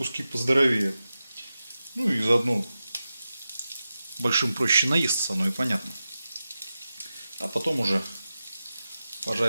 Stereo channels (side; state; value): both; inverted; correlation -0.93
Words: поздоровее. Ну и заодно большим проще наесться, оно и понятно. А потом уже